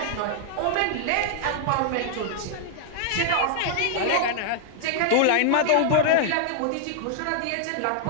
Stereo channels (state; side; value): different; both; correlation -0.01